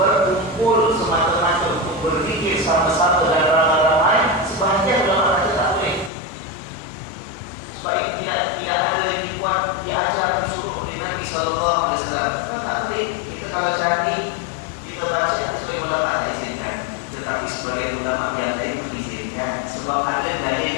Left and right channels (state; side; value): drops out; right; at 6.1 s